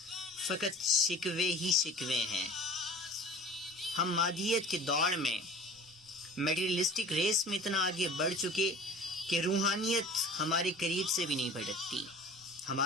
شکوے ہی شکوے ہیں۔ ہم مادیت کی دوڑ میں، میٹیریلسٹک ریس میں اتنا آگے بڑھ چکے کہ روحانیت ہمارے قریب سے بھی نہیں بھٹکتی،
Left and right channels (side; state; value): both; normal; correlation 0.42